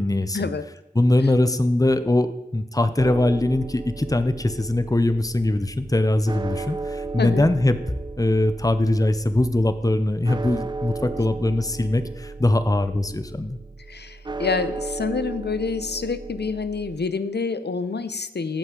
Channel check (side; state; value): both; normal; correlation 0.88